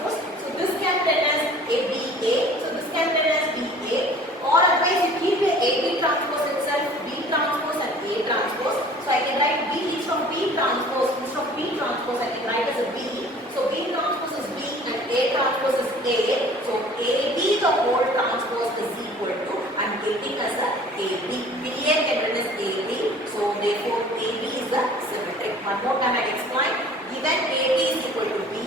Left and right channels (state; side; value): normal; both; correlation 0.48